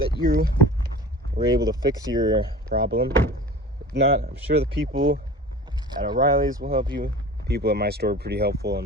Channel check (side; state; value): both; normal; correlation 0.38